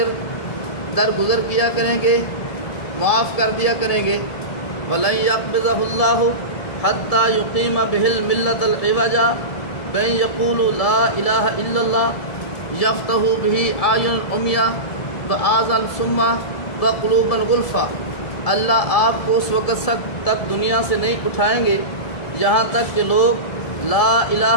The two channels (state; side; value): late; right; 1.7 ms